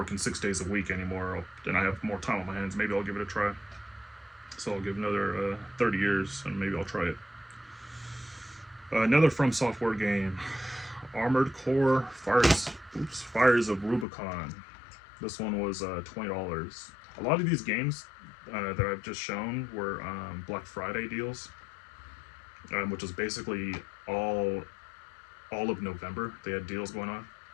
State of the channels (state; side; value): drops out; right; at 14.1 s